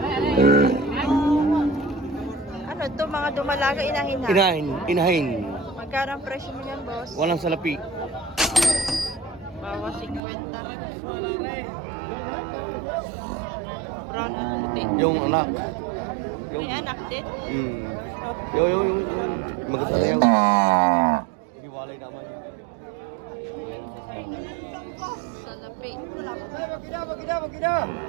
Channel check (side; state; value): left; drops out; at 10.2 s